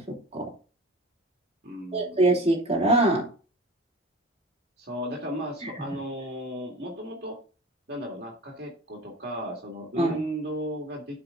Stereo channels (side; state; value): both; normal; correlation 0.37